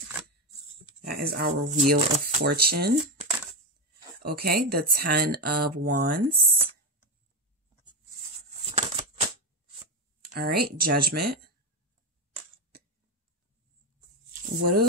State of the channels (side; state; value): both; normal; correlation 0.10